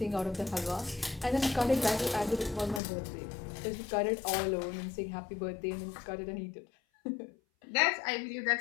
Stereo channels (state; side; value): drops out; right; at 2.8 s